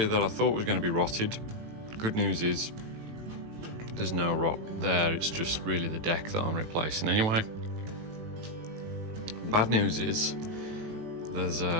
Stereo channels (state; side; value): late; left; 18 ms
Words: that I thought was going to be rotted, good news is there's no rot there, it's just really the deck that I'm replacing anyway. Bad news is there's